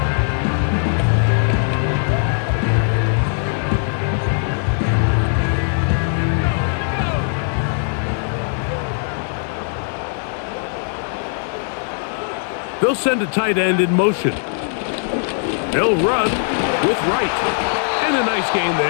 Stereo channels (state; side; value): silent; right; 66 dB below the other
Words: They'll send a tight end in motion. They'll run with Wright. And a nice gain